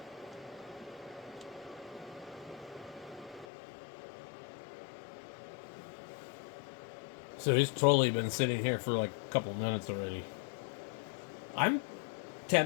So he's totally been sitting here for like a couple minutes already. I'm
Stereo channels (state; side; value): drops out; right; at 3.5 s